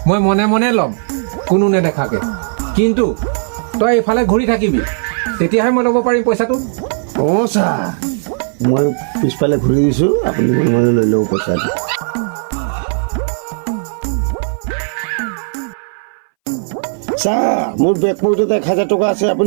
মই মনে মনে ল'ম কোনো নেদেখাকে কিন্তু তই এইফালে ঘূৰি থাকিবি তেতিয়াহে মই ল'ব পাৰিম পইচাটো অঁ ছাৰ মই পিছফালে ঘূৰি দিছোঁ আপুনি মনে মনে লৈ ল'ব পইচাটো ছাৰ মোৰ বেগ পকেটত 1000 টকা আছে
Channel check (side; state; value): left; silent; 64 dB below the other